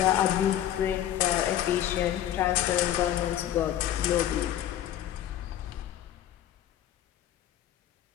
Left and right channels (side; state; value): right; quieter; 11.7 dB